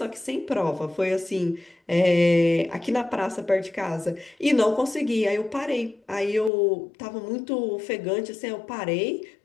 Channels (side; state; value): right; drops out; at 6.5 s